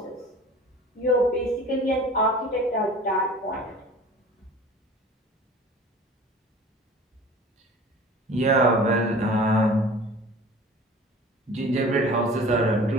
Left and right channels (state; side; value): normal; both; correlation 0.43